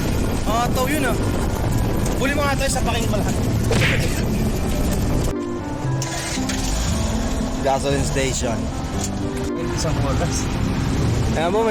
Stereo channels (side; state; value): both; identical; correlation 1.00